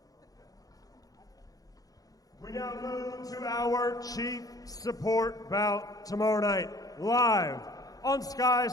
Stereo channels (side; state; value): right; late; 0.18 ms